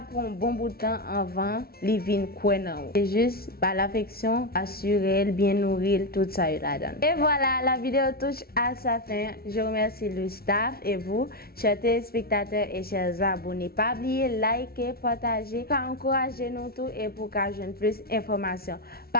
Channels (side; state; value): right; late; 0.44 ms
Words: pour un bon bout de temps avant, il vient courir. C'est juste l'affection, assurer, bien nourrir, tout ça là-dedans. Et voilà, la vidéo touche à sa fin. Je remercie le staff et vous, chers téléspectateurs et chers abonnés. Pas oublier, liker, partager, pour encourager nous tous et pour que je plus d'informations.